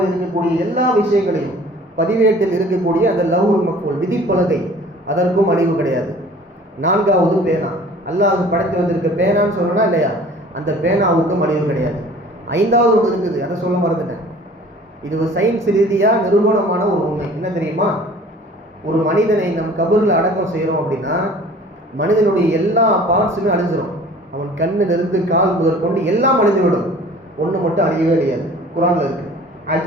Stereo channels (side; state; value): both; normal; correlation 0.48